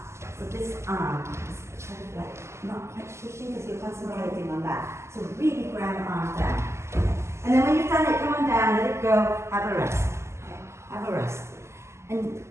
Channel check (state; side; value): late; left; 0.13 ms